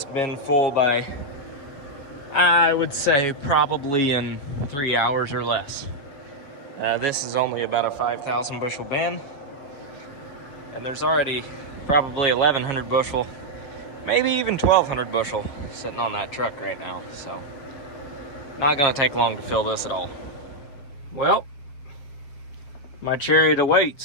bin full by, I would say, probably in 3 hours or less. This is only about a 5,000 bushel bin, and there's already probably 1,100 bushel, maybe even 1,200 bushel sitting on that truck right now. So not gonna take long to fill this at all. Well, my chariot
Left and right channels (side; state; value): right; late; 7.5 ms